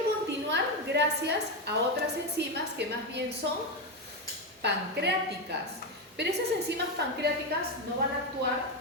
continuar gracias a otras enzimas que más bien son pancreáticas. Pero esas enzimas pancreáticas no van a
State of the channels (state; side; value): normal; both; correlation 0.09